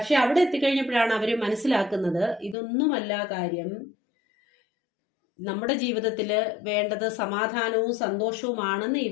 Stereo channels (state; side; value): drops out; right; at 2.6 s